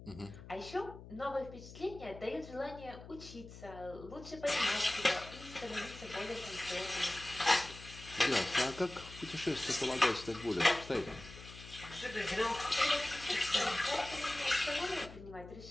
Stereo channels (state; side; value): noise; left; hum, 15 dB below the sound